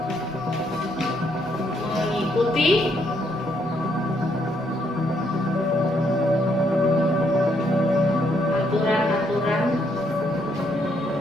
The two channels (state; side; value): normal; both; correlation 0.73